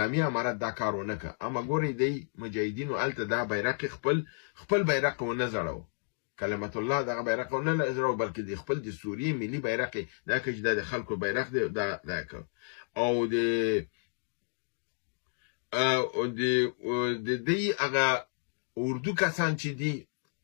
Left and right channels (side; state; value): right; silent; digital silence